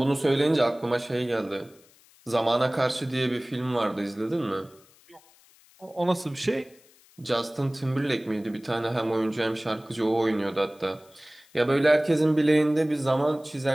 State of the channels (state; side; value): noise; left; hiss, 29 dB below the sound